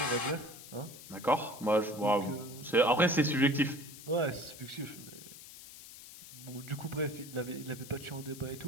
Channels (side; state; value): left; noise; hiss, 16 dB below the sound